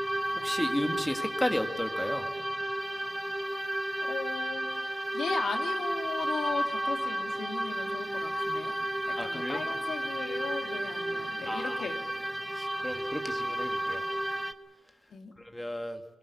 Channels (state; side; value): normal; both; correlation 0.96